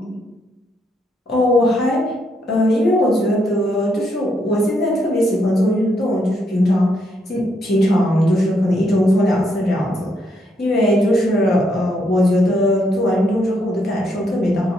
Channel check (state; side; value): normal; both; correlation 0.75